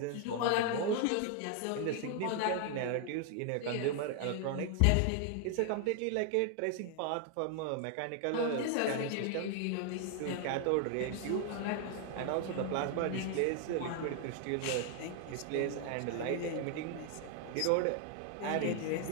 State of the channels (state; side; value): different; both; correlation 0.00